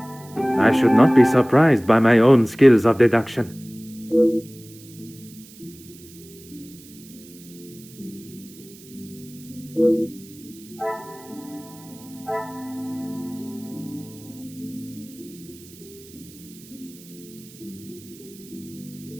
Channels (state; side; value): noise; right; hiss, 21 dB below the sound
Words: I should not be surprised by my own skills of deduction.